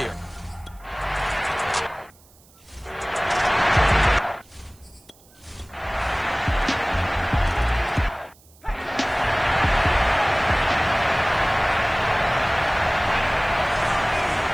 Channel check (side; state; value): right; noise; hiss, 28 dB below the sound